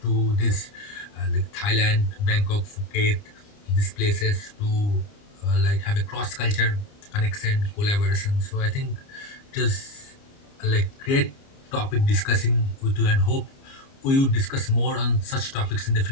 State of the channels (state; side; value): late; right; 29 ms